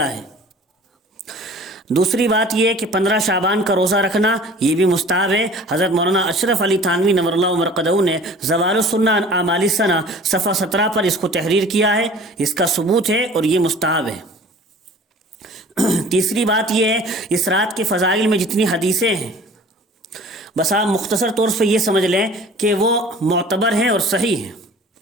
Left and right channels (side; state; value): both; normal; correlation 0.46